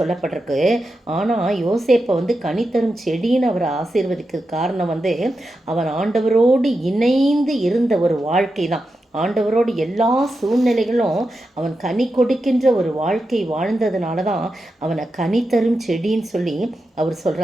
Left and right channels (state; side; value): normal; both; correlation 0.89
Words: ஆனால் யோசேப்பை கனித்தரும் செடின்னு அவரை ஆசீர்வதிக்க காரணம் அவன் ஆண்டவரோடு இணைந்து இருந்த ஒரு வாழ்க்கை தான். ஆண்டவரோடு எல்லா சூழ்நிலைகளும் அவன் கனி கொடுக்கின்ற ஒரு வாழ்க்கை வாழ்ந்ததுனால தான் அவனை கனித்தரும் செடின்னு சொல்லி அவர்